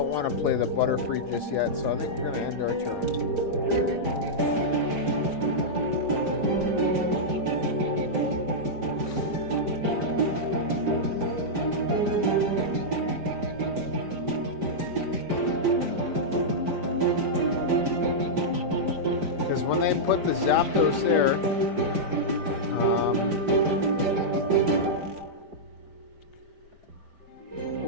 want to play the Butterfree just yet, so I think we're going to end our turn. Because when they put the Zapdos there,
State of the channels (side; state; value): left; late; 5.0 ms